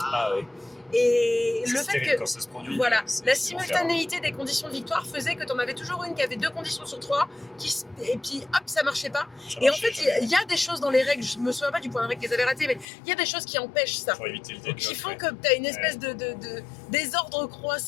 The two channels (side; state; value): right; drops out; at 12.9 s